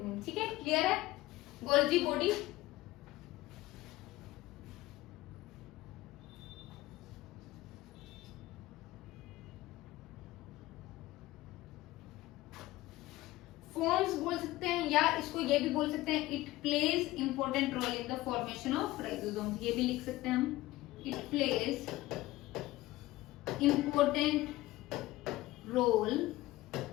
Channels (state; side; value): quieter; right; 17.7 dB